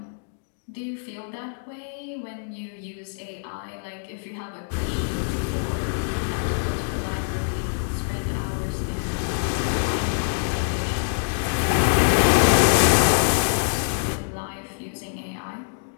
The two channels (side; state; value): right; silent; digital silence